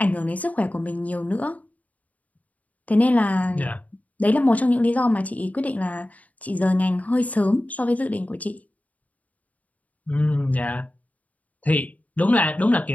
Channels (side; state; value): right; late; 0.072 ms